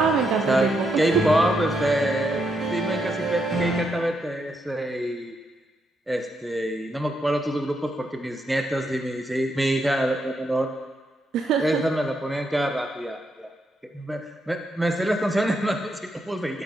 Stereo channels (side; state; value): both; normal; correlation 0.80